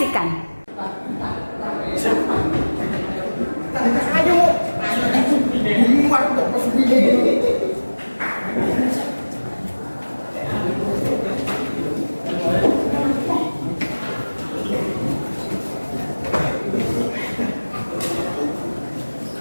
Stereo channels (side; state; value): both; inverted; correlation -1.00